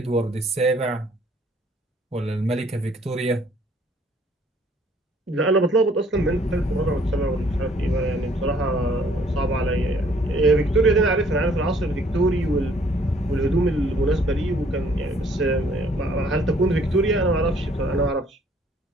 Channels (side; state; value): both; normal; correlation 0.61